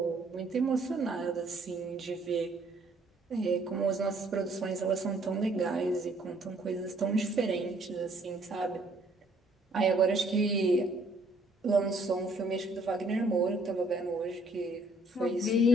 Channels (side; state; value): both; normal; correlation 0.64